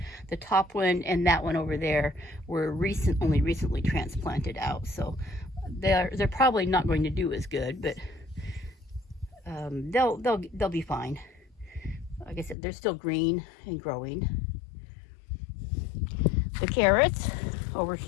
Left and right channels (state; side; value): drops out; right; at 12.6 s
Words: The top one and that one over there were only recently transplanted out, so they're probably not going to do as good, but they'll be fine. Like I said, they're still green and growing. The carrots over